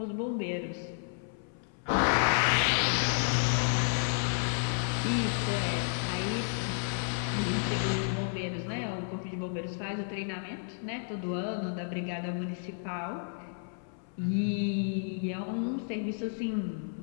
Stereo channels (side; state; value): right; silent; 56 dB below the other